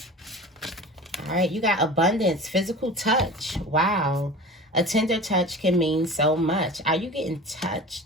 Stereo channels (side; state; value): both; normal; correlation 0.36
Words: All right, you got abundance, physical touch. Wow. A tender touch can mean so much. Are you getting